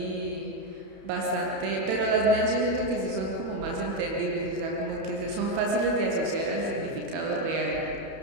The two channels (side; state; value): left; late; 31 ms